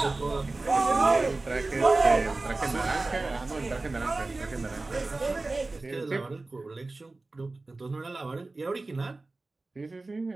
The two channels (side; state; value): left; quieter; 3.3 dB